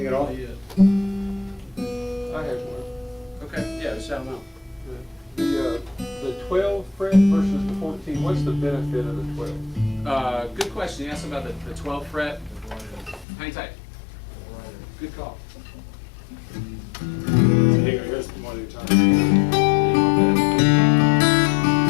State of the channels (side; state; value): right; drops out; at 13.2 s